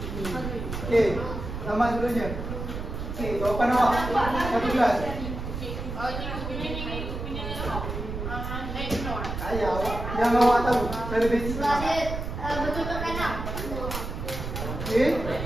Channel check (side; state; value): right; noise; rumble, 6 dB below the sound